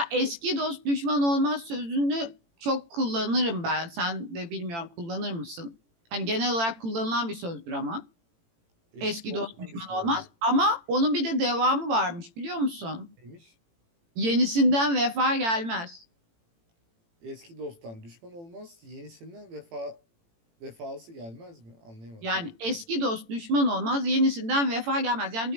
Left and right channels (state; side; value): late; left; 18 ms